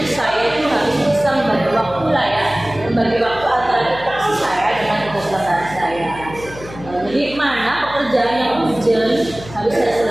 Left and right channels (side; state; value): left; noise; hum, 16 dB below the sound